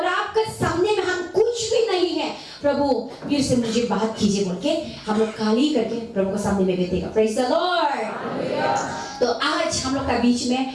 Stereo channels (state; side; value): identical; both; correlation 1.00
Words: आपके सामने में हम कुछ भी नहीं है। प्रभु फिर से मुझे बात कीजिए बोल के हम लोग खाली करके प्रभु के सामने में बैठेगा। Praise the Lord. तो आज हम लोग का बीच